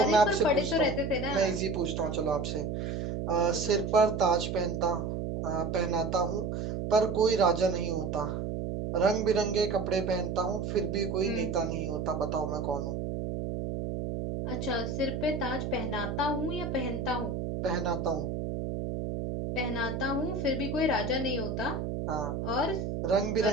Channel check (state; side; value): noise; right; hum, 3 dB below the sound